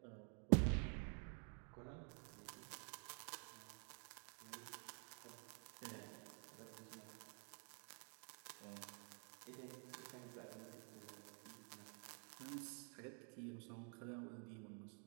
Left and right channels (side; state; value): left; quieter; 38.4 dB